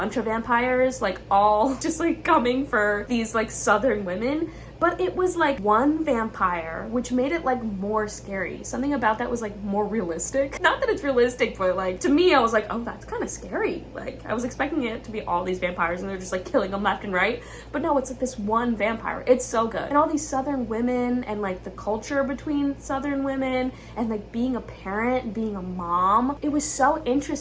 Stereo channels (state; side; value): identical; both; correlation 1.00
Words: of vampires, like all just like coming for these like southern women, but it was like one vampire, which made it like more scary. Something about that was like more realistic. Not that it's realistic, but like to me, I was like, oh, that's kind of scary. Like I was expecting it to be all these vampires and they're just like killing them left and right. But no, it's like this one vampire. It's so good. And all these southern women and like the culture between southern women and like being a parent, being a mom. It was so